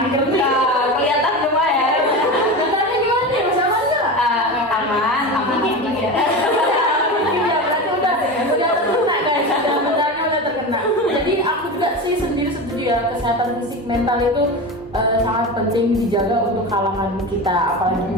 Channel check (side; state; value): both; normal; correlation 0.25